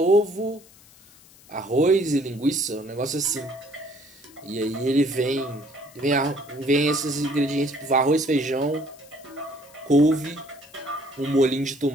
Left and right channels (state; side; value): noise; left; hiss, 25 dB below the sound